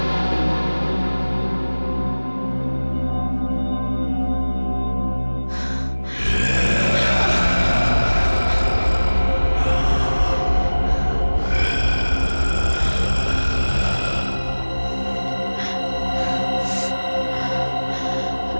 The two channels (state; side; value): inverted; both; correlation -1.00